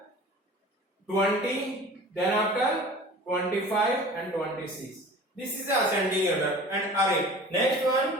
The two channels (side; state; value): both; normal; correlation 0.41